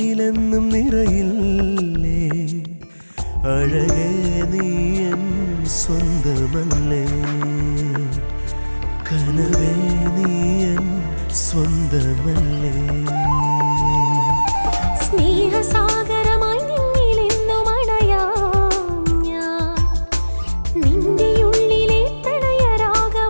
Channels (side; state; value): both; inverted; correlation -1.00